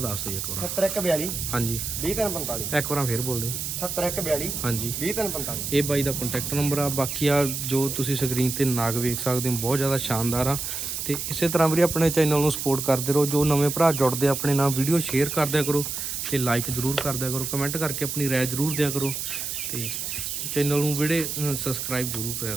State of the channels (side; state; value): right; noise; hiss, 4 dB below the sound